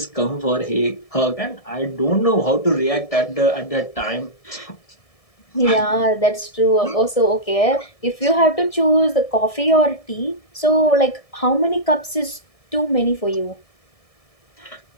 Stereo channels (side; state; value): right; late; 1.7 ms